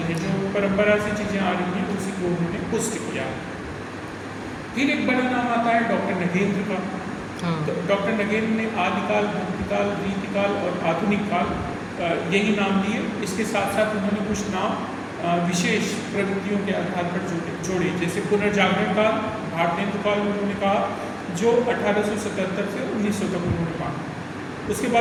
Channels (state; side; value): identical; both; correlation 1.00